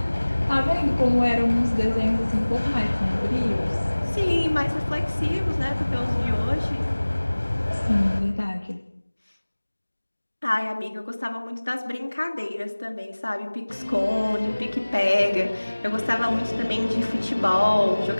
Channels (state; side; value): inverted; both; correlation -1.00